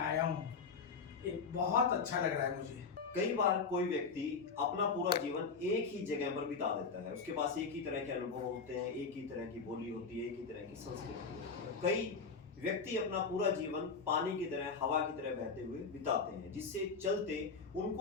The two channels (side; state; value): right; quieter; 5.1 dB